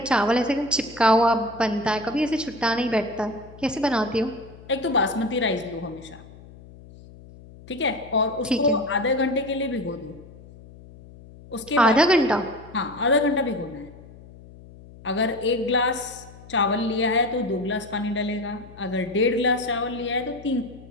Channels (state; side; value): noise; left; hum, 20 dB below the sound